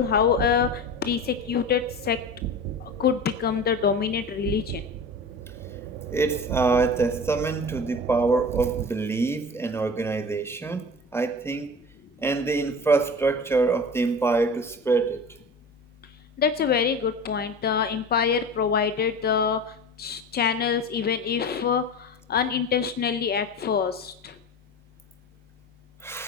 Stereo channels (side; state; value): both; normal; correlation 0.33